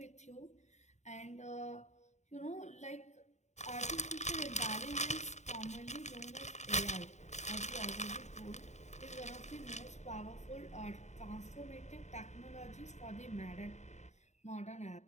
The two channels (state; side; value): late; right; 0.34 ms